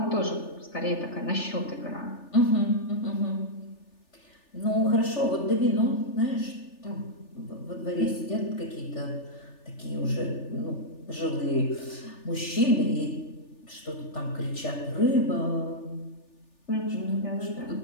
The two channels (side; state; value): right; late; 3.4 ms